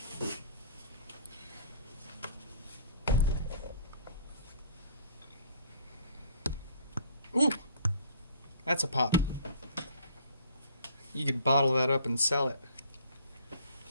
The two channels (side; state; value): both; inverted; correlation -0.55